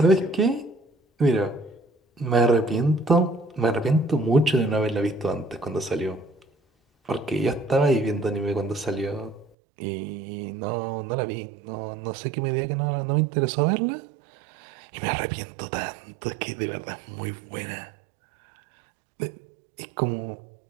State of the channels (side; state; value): left; drops out; at 9.5 s